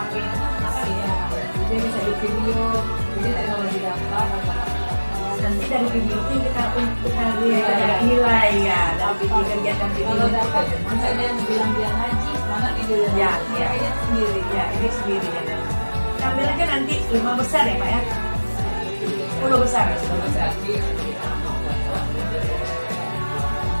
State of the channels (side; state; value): both; inverted; correlation -1.00